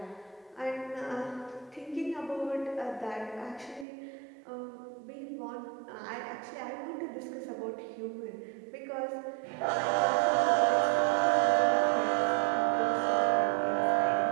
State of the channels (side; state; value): left; drops out; at 3.9 s